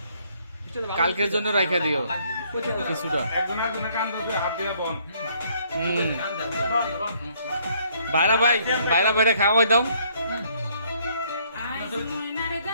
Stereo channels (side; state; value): both; inverted; correlation -0.65